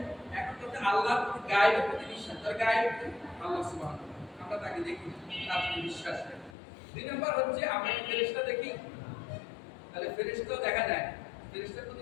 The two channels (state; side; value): drops out; right; at 6.6 s